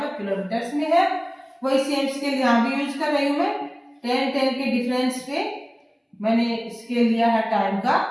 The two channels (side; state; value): both; identical; correlation 1.00